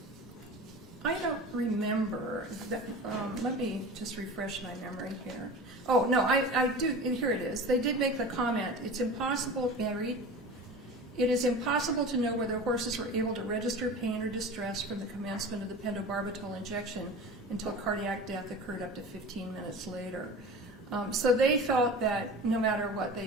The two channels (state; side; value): normal; both; correlation 0.35